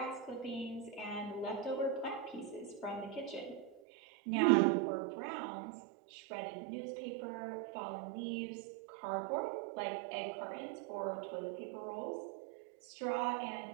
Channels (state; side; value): drops out; left; at 3.8 s